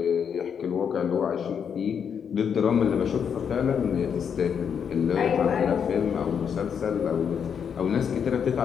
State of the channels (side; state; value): right; quieter; 7.4 dB